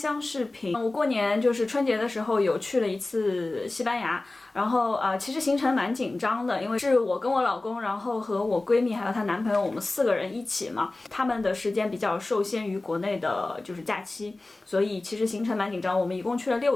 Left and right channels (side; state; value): right; quieter; 3.0 dB